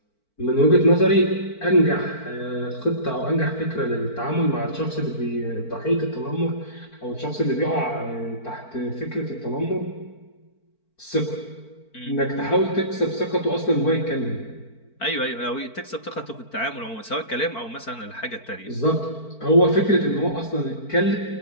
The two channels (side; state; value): right; late; 4.5 ms